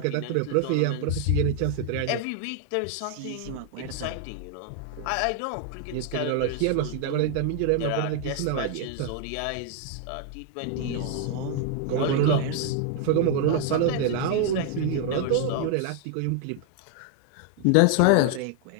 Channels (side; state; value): both; different; correlation 0.00